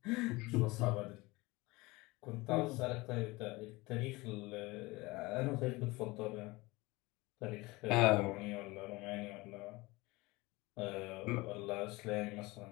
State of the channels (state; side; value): quieter; right; 22.3 dB